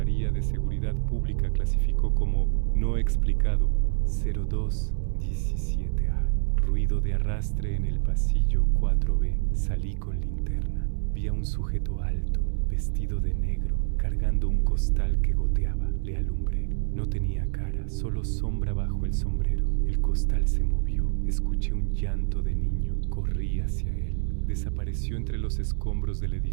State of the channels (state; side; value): silent; left; 60 dB below the other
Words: de Seguridad Pública clasificó como no explicado: 0217A. Ruido de arrastre en el pasillo 4B. Salí con linterna. Vi a un sujeto alto, vestido de negro, cargando un costal que goteaba. Le alumbré. No tenía cara, solo sombra bajo el sombrero. El costal se movió. Escuché un llanto de niño. Corrí hacia él. Desapareció entre los escombros del